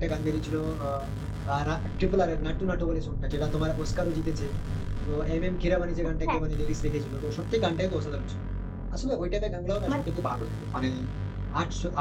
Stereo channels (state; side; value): identical; both; correlation 1.00